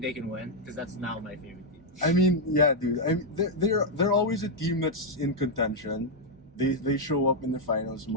they can win? Because that's now my favorite team. I mean, yeah, dude. I mean, they're always a team that's in contention. They show up in the finals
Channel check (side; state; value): both; normal; correlation -0.02